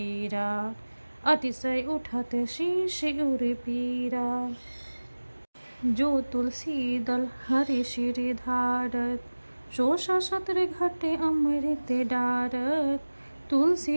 अतिशय उठत शीश उर पीरा। जो तुलसी दल हरि सिर धारत, सो सत्र घटे अमृत डारत।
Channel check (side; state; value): both; inverted; correlation -1.00